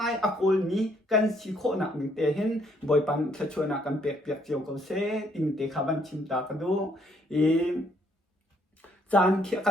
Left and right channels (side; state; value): both; normal; correlation 0.68